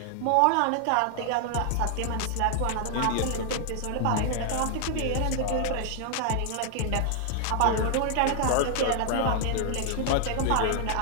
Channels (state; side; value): different; both; correlation 0.00